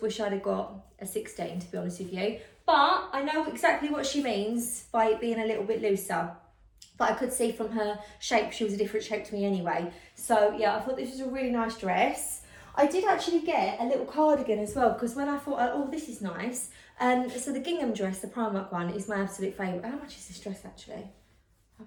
wish I'd have got a 16, to be honest with you. But I know exactly what she means by it being a little bit looser. But I could see from her shape, she was a different shape to me anyway. So yeah, I thought this was a really nice dress. I did actually get a little cardigan as well, because when I thought, oh, this is nice. So the gingham dress, the Primark one, is my absolute favourite. How much is this dress actually? I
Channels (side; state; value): both; identical; correlation 1.00